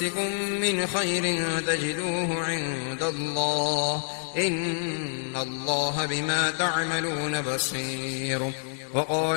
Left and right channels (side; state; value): right; silent; 56 dB below the other